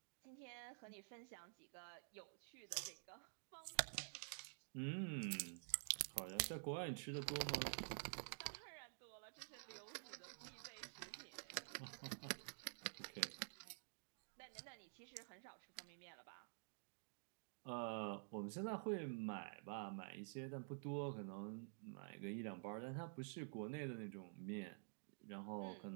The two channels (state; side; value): silent; left; digital silence